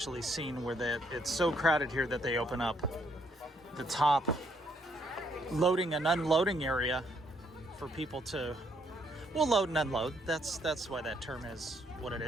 seen where it's so crowded here that they open up the top loading and unloading area for people to, load and unload. That's why that term is what it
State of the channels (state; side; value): normal; both; correlation 0.71